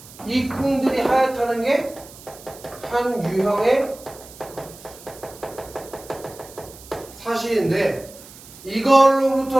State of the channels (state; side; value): noise; right; hiss, 19 dB below the sound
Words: 이 콩들이 하얗다는 게 한 유형의 사실인데